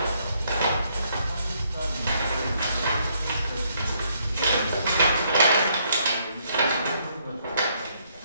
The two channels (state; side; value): inverted; both; correlation -0.71